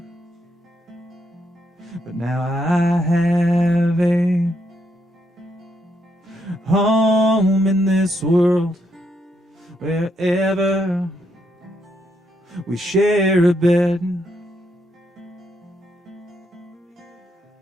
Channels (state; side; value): normal; both; correlation 0.78